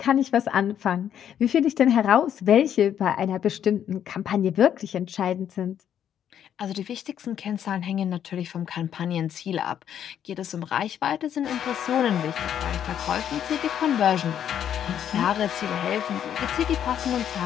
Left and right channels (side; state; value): right; quieter; 9.6 dB